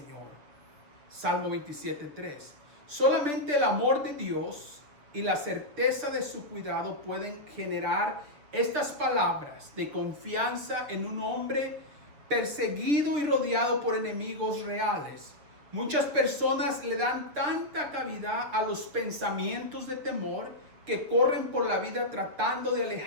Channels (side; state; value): left; late; 6.7 ms